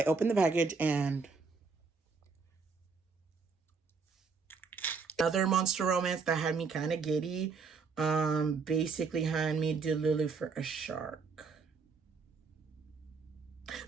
opened the package and another monster romance that had me kind of giddy. Basically had me delulu for a shark.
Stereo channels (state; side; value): quieter; left; 4.9 dB